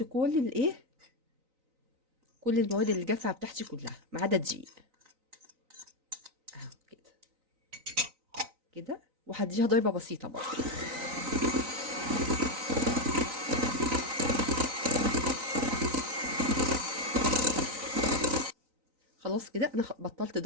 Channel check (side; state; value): left; late; 3.9 ms